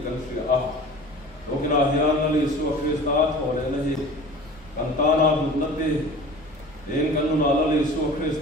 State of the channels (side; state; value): both; normal; correlation 0.41